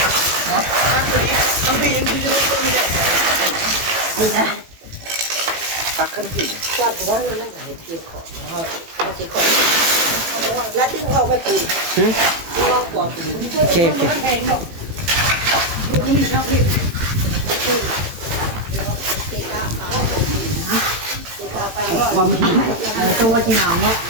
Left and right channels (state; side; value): late; left; 18 ms